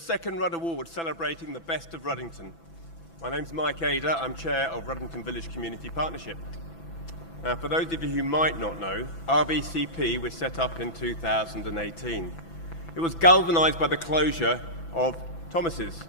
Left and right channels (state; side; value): late; right; 6.0 ms